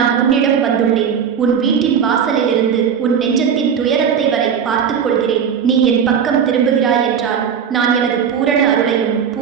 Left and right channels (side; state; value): left; quieter; 7.5 dB